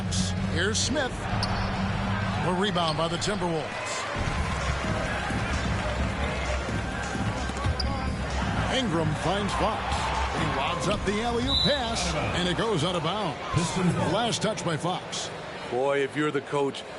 Here's Smith. A rebound by the Timberwolves. Ingram finds Fox. He lobs up the alley-oop pass, and it goes out of bounds. Last touch by Fox. Boy, if you're the coach,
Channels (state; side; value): identical; both; correlation 1.00